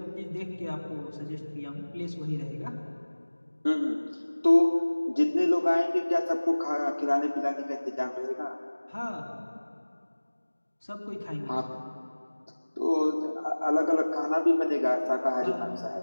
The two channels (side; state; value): both; inverted; correlation -1.00